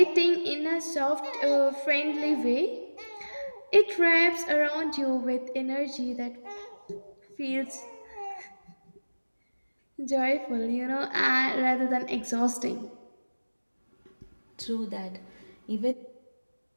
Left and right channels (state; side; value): inverted; both; correlation -1.00